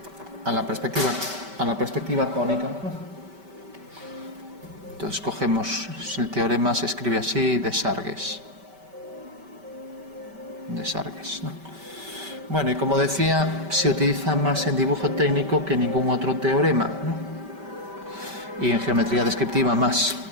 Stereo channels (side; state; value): left; late; 5.2 ms